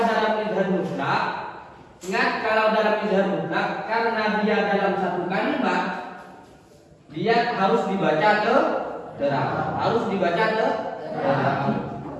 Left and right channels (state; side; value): identical; both; correlation 1.00